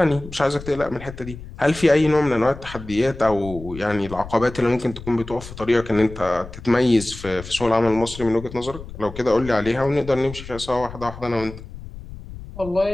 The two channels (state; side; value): noise; left; rumble, 14 dB below the sound